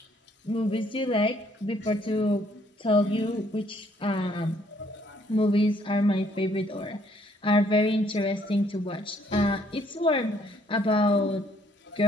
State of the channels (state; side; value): normal; both; correlation 0.66